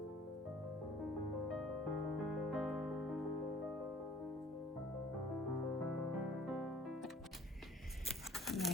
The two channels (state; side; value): normal; both; correlation 0.52